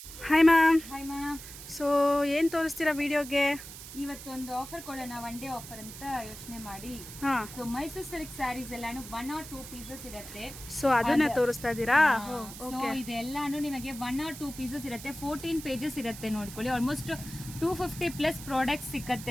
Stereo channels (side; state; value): right; noise; hiss, 13 dB below the sound